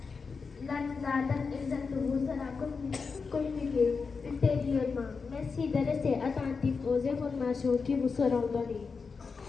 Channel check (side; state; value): right; quieter; 5.0 dB